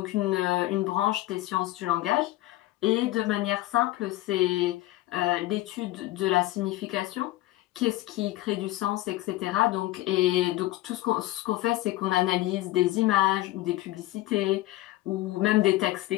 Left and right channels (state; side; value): quieter; right; 16.8 dB